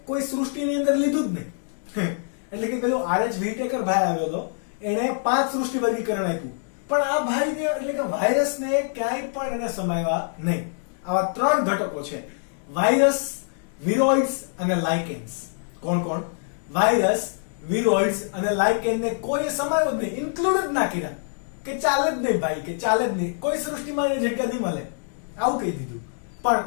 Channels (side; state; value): right; silent; digital silence